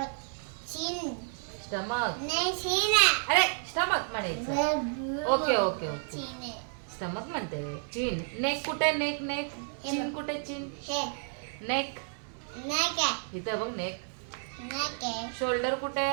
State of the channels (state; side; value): silent; left; 57 dB below the other